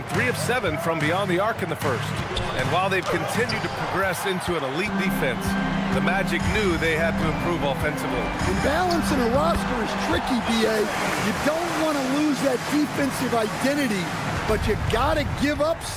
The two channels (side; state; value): both; identical; correlation 1.00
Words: 3 of 7 from beyond the arc in the first. And while they've continued to progress into an elite defense, the Magic knew they had to improve offensively. And balancing a roster is tricky, B.A. You don't want to lose that defensive identity, but you got to give up